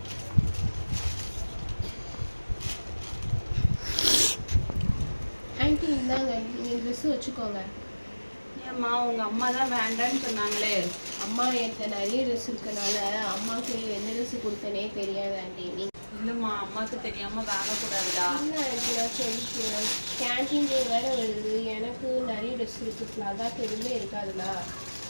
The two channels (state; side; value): inverted; both; correlation -1.00